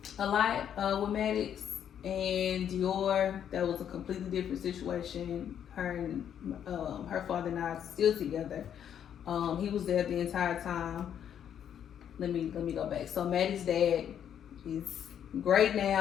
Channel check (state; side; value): quieter; right; 9.2 dB